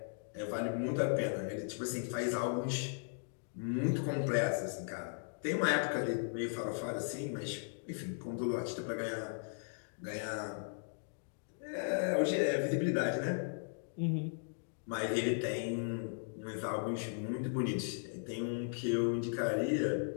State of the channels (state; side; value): silent; right; digital silence